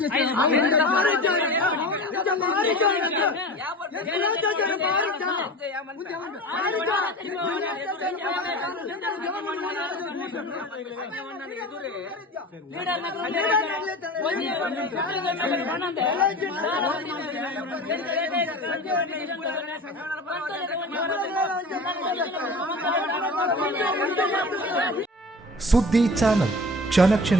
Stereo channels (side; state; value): both; normal; correlation 0.35